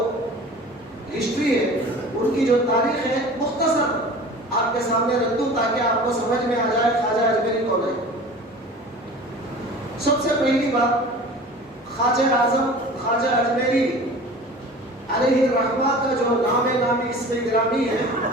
ہسٹری ہے، ان کی جو تاریخ ہے، مختصر آپ کے سامنے رکھ دوں تاکہ آپ کو سمجھ میں آ جائے خواجہ اجمیری کون ہے. سب سے پہلی بات، خواجہ اعظم خواجہ اجمیری علیہ الرحمہ کا جو نامی اسم گرامی ہے،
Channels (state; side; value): normal; both; correlation 0.40